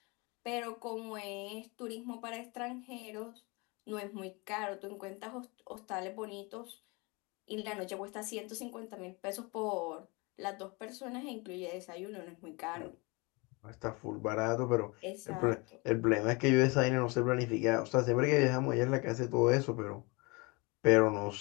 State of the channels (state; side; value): quieter; right; 27.6 dB